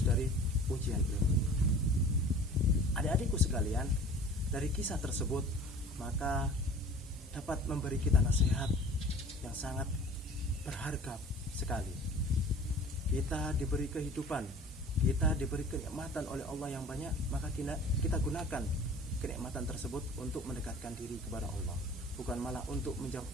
ini. Adik-adikku sekalian, dari kisah tersebut maka dapat memberi kita nasihat yang sangat berharga sekali. Kita diberi kehidupan, kita diberi kenikmatan oleh Allah yang banyak, maka kita gunakan kenikmatan tersebut untuk mendekatkan diri kepada Allah, bukan malah untuk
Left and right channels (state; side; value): normal; both; correlation 0.45